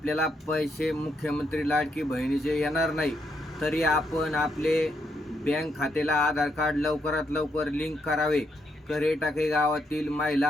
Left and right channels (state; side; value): normal; both; correlation 0.78